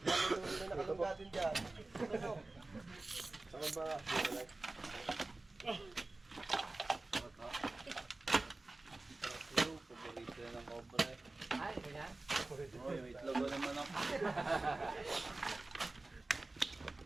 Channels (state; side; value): quieter; left; 3.1 dB